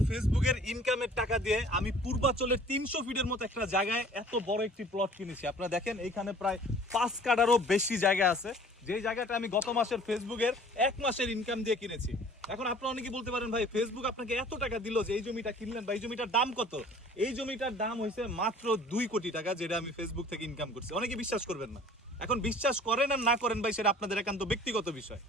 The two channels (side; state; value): both; normal; correlation 0.49